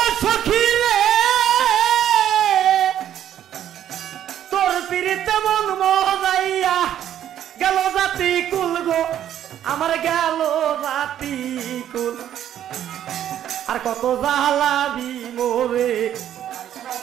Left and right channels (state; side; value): quieter; left; 10.8 dB